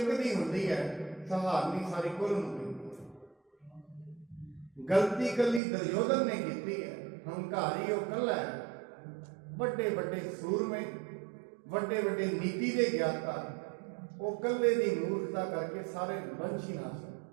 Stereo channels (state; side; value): drops out; left; at 5.6 s